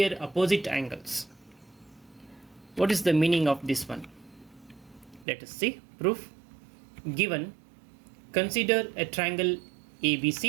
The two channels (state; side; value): drops out; left; at 5.2 s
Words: opposite angles. What is the meaning of this one? Let us see. Proof. Given, consider a triangle